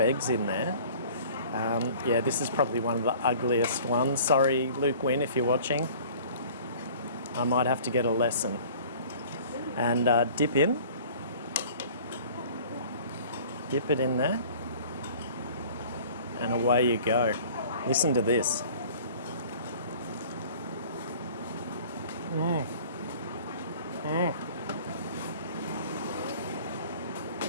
in there. Yeah, this is probably one of the ugliest ones. Sorry, Luke Wynn, if you're watching. I might have to get a lesson. And dip in. Dip it in there. And away you go. Listen to this.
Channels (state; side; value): inverted; both; correlation -0.48